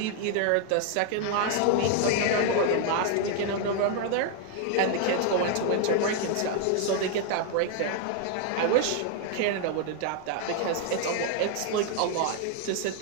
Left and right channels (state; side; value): different; both; correlation 0.00